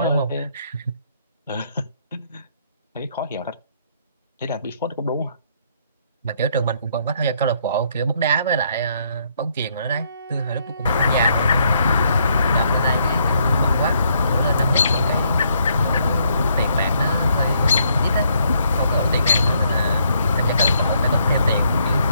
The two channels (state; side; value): inverted; both; correlation -0.72